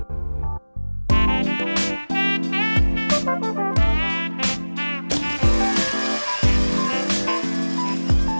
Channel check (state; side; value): inverted; both; correlation -1.00